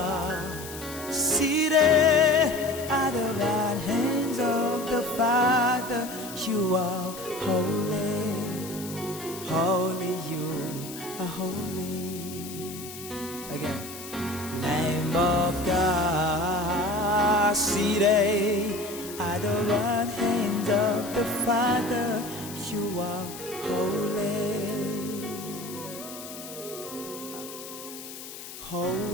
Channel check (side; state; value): left; noise; hiss, 12 dB below the sound